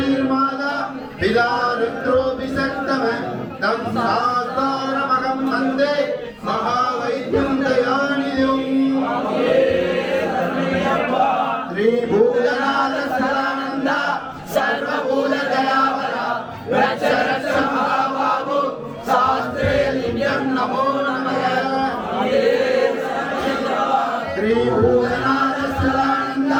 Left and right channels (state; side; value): identical; both; correlation 1.00